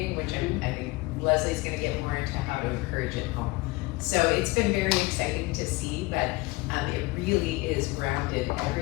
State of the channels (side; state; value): right; quieter; 22.6 dB